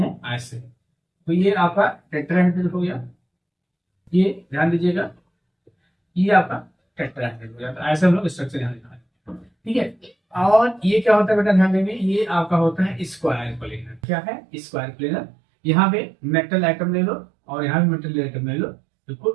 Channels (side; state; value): left; drops out; at 14.0 s